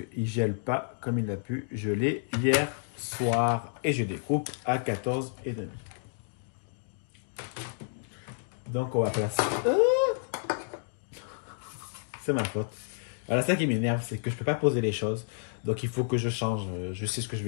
il gèle pas comme il a pu geler hier soir. Et je découpe à 14,5. Donc, on va placer... C'est ma faute. Voilà, ça qui m'énerve, c'est que je peux pas poser les choses. Donc, il faut que je change. Je sais ce que je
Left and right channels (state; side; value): silent; right; digital silence